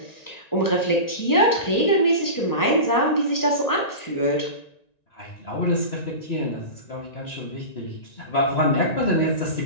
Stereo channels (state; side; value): late; right; 1.9 ms